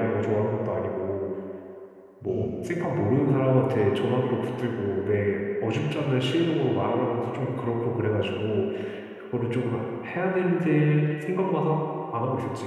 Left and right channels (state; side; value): identical; both; correlation 1.00